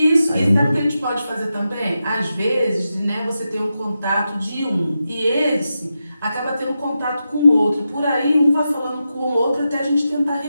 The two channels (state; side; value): inverted; both; correlation -0.89